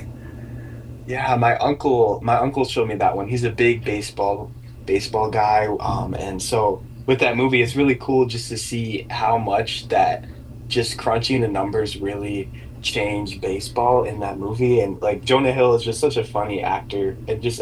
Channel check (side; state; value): both; identical; correlation 1.00